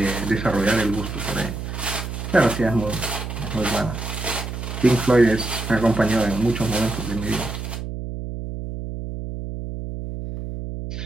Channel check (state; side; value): noise; right; hum, 6 dB below the sound